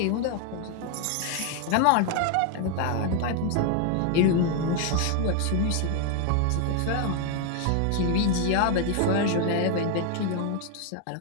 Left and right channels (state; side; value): different; both; correlation 0.01